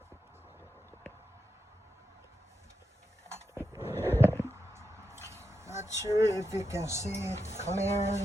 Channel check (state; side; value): normal; both; correlation 0.86